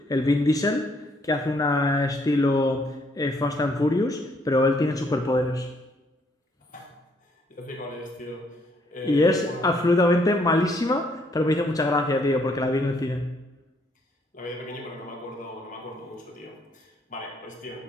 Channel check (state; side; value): normal; both; correlation 0.68